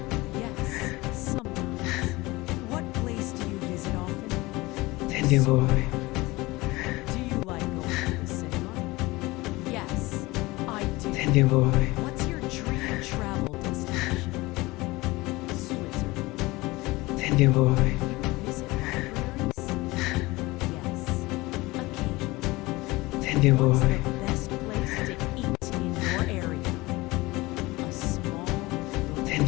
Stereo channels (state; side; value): quieter; right; 21.2 dB